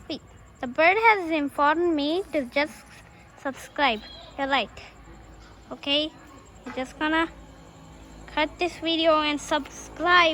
Wait, the bird has informed me to just subscribe. You're right. Okay, I'm just gonna cut this video and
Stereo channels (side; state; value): both; identical; correlation 1.00